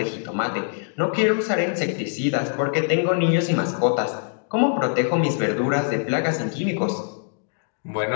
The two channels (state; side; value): silent; right; 60 dB below the other